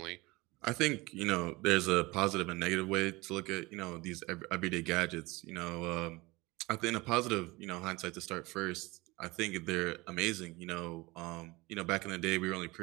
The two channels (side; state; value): left; quieter; 22.7 dB